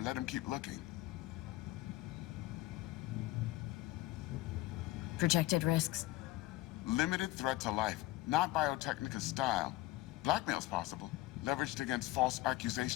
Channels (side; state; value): right; quieter; 17.6 dB